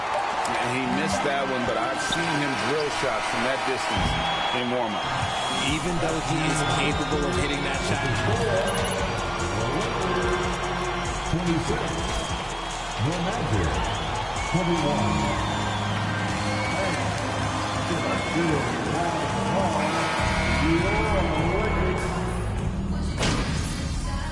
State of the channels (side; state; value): both; identical; correlation 1.00